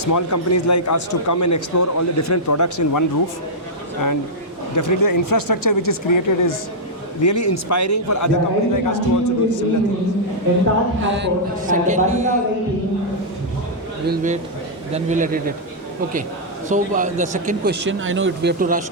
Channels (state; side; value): normal; both; correlation -0.08